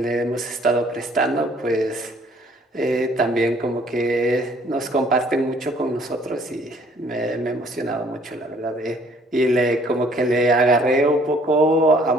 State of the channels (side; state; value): both; normal; correlation 0.59